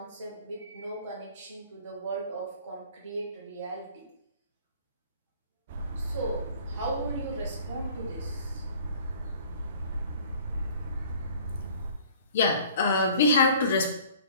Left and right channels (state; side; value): inverted; both; correlation -0.52